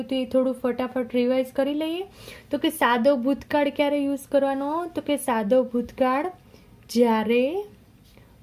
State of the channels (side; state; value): both; identical; correlation 1.00